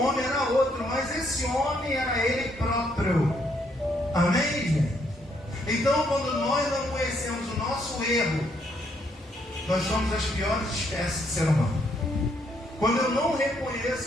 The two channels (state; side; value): normal; both; correlation 0.72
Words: homem era outro, mas esse homem era ele próprio. Amém, gente? Então, quando nós não conhecemos o nosso erro, nós somos as piores espécies de ser humano. Quando eu não reconheço